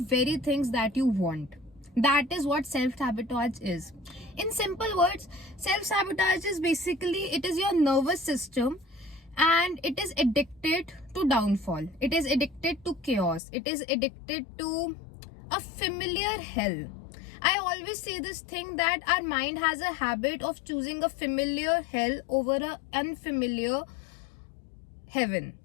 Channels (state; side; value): drops out; right; at 13.4 s